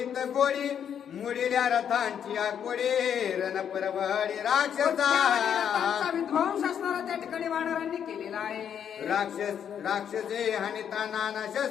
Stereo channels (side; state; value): right; quieter; 8.6 dB